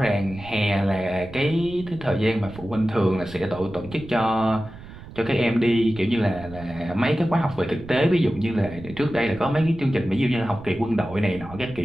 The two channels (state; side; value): noise; right; rumble, 16 dB below the sound